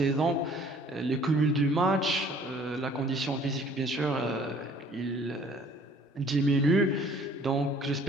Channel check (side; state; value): both; normal; correlation 0.55